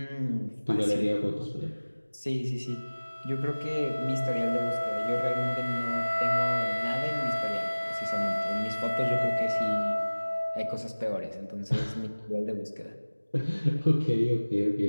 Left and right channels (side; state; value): both; inverted; correlation -1.00